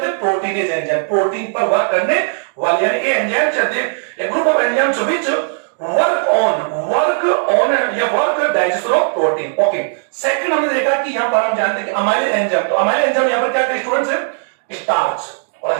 हैं, प्रोटीनेज एंजाइम, प्रोटीन पर वर्क करने वाले, यानी ये एंजाइम चलते हैं group of enzymes which work on या work digestion of protein. Okay, second हमने देखा कि यहां पर हम जानते हैं कि अमाइलेज एंजाइम, तो अमाइलेज एंजाइम यहां पर क्या है स्टूडेंट्स है, स्टार्च, और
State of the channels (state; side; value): silent; left; digital silence